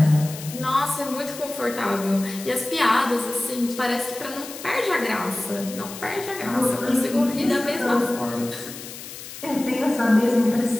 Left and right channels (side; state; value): left; noise; hiss, 12 dB below the sound